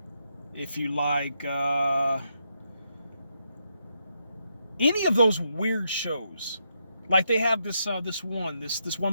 if you like any of those weird shows, like they have this one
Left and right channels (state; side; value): inverted; both; correlation -0.80